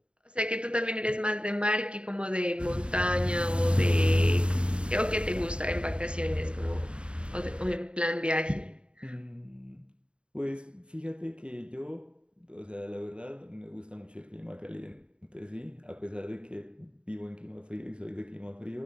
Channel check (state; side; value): late; left; 0.054 ms